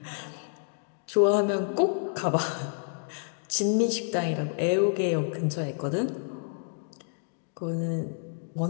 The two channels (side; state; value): right; silent; digital silence